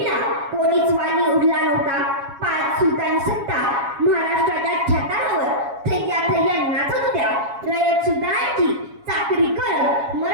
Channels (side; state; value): left; late; 7.3 ms